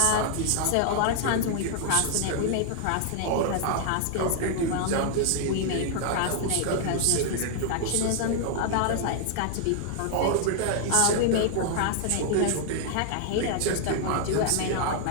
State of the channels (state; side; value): different; both; correlation -0.01